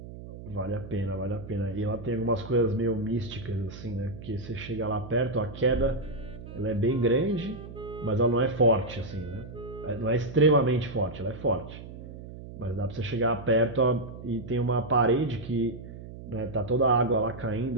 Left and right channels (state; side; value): noise; right; hum, 13 dB below the sound